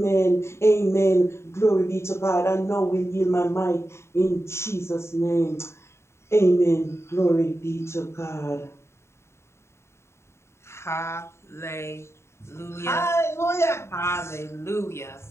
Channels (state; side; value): late; right; 0.13 ms